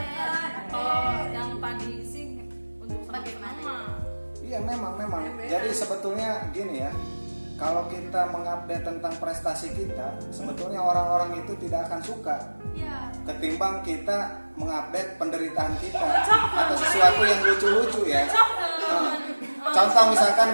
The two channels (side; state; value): both; inverted; correlation -1.00